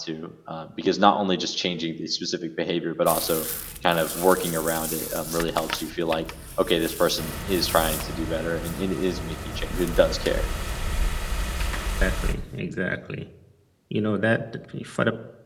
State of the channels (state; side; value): identical; both; correlation 1.00